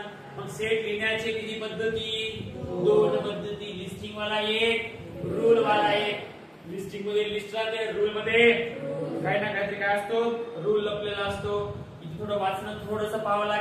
मग सेट लिहिण्याचे किती पद्धती, 2 पद्धती. लिस्टिंग वाला एक, रूल वाला एक. लिस्टिंग मध्ये लिस्ट राहते, रूल मध्ये काही ना काहीतरी काय असतो, रूल लपलेला असतो. इथे थोडं वाचणं थोडंसं पाहावं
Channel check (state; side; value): identical; both; correlation 1.00